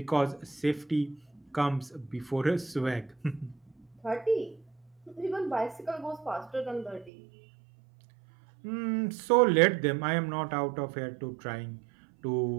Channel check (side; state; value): left; drops out; at 7.1 s